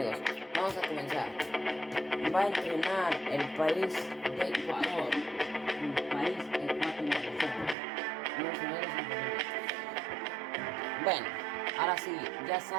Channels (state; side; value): drops out; left; at 7.8 s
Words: vamos a comenzar. Va a entrenar el país de Ecuador. El país ecuatoriano. Bueno, ahora sí, ya